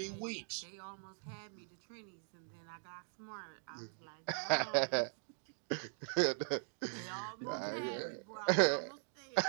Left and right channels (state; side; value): silent; left; digital silence